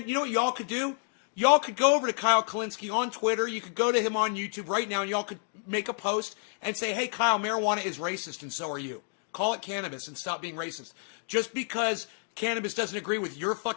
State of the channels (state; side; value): silent; right; 56 dB below the other